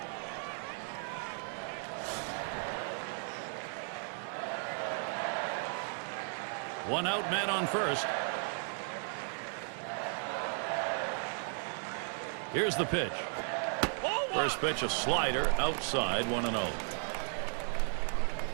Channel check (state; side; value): silent; left; 54 dB below the other